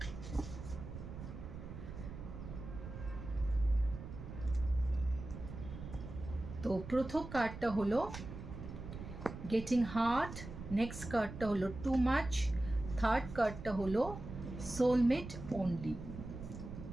তো প্রথম কার্ডটা হলো গেটিং হার্ট, নেক্সট কার্ডটা হলো টু মাচ, থার্ড কার্ডটা হলো সোলমেট অনলি।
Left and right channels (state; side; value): noise; right; rumble, 10 dB below the sound